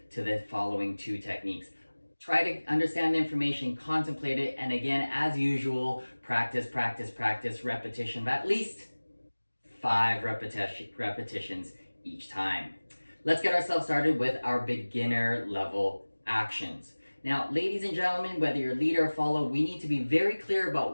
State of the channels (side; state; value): both; inverted; correlation -1.00